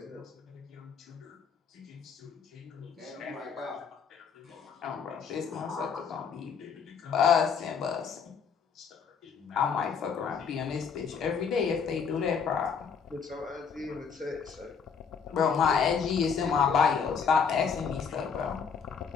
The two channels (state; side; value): quieter; right; 6.3 dB